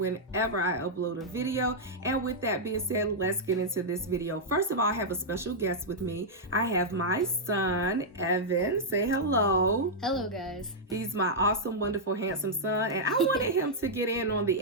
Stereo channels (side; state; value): both; normal; correlation -0.06